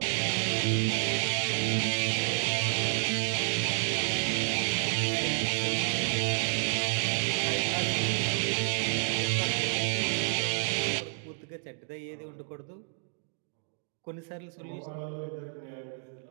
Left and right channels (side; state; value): left; silent; 58 dB below the other